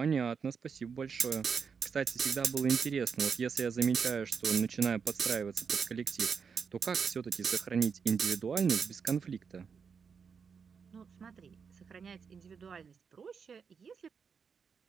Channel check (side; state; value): left; quieter; 6.1 dB